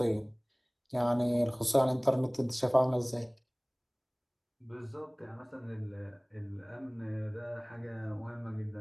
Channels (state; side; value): identical; both; correlation 1.00